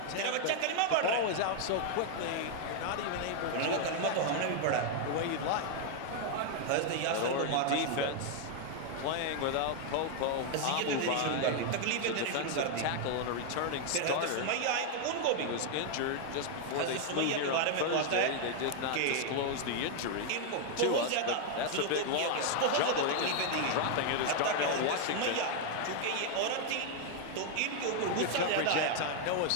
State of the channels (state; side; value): different; both; correlation 0.00